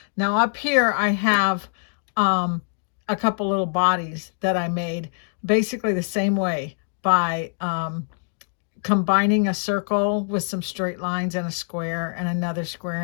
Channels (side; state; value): right; silent; digital silence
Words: Now up here I have a couple little bodies that I made basically the same way by combining a circle with some straight lines and a square and another square